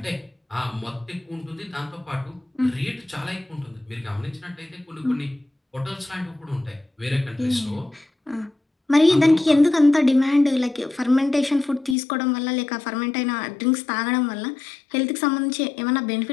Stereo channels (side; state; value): right; drops out; at 12.0 s